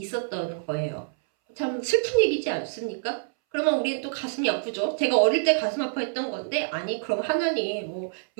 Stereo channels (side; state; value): left; silent; 61 dB below the other